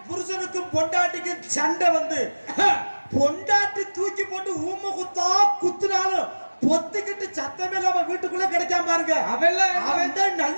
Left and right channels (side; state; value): both; inverted; correlation -1.00